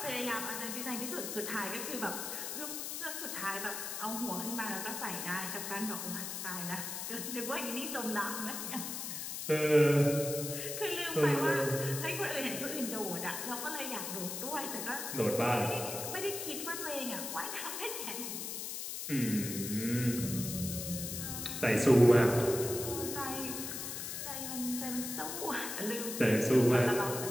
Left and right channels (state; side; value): noise; left; hiss, 5 dB below the sound